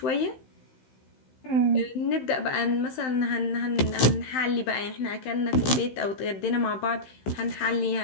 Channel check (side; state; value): right; late; 15 ms